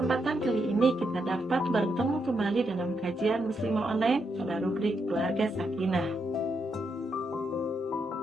kali ini kita dapat bertemu kembali dalam kajian Muslimah Online pada rubrik Keluarga Sakinah.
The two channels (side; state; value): both; normal; correlation 0.81